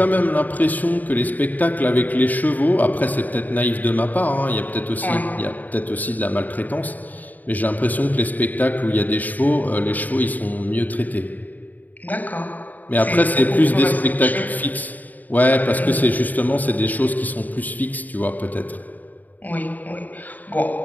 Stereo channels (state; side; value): late; right; 0.082 ms